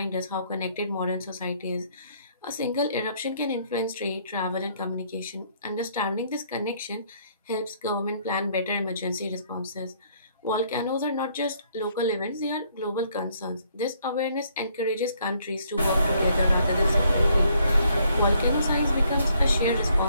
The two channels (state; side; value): inverted; both; correlation -0.67